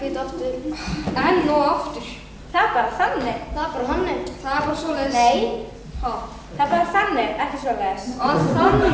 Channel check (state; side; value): identical; both; correlation 1.00